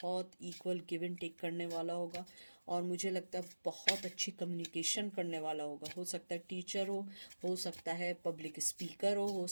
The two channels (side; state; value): both; inverted; correlation -1.00